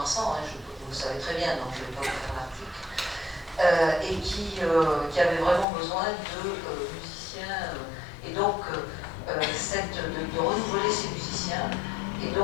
vous le savez très bien, donc je ne vais pas vous faire l'article. Et qui avait vraiment besoin de musiciens, et donc de renouveler ces musiciens. Et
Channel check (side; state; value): right; drops out; at 5.7 s